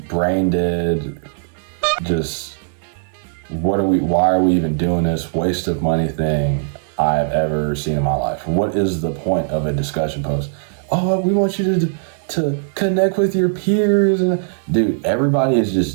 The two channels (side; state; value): left; silent; digital silence